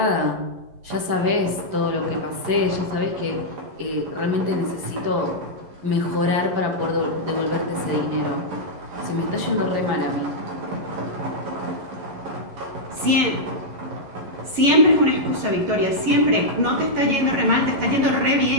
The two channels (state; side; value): late; left; 11 ms